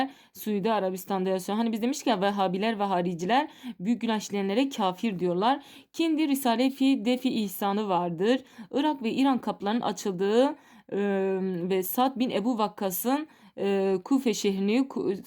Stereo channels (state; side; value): identical; both; correlation 1.00